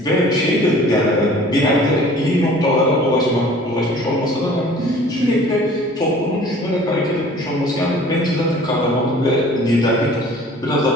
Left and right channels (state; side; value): normal; both; correlation 0.49